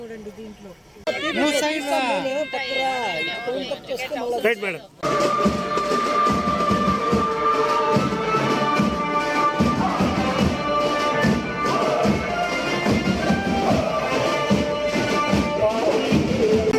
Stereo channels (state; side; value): identical; both; correlation 1.00